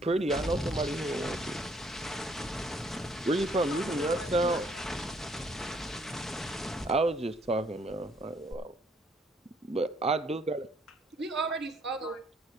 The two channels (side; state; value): both; normal; correlation 0.65